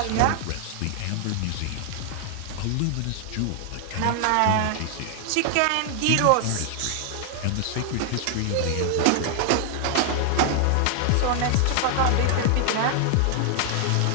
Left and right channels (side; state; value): both; different; correlation 0.00